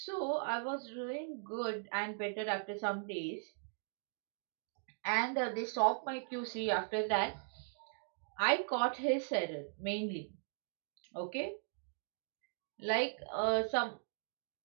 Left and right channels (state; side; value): silent; left; digital silence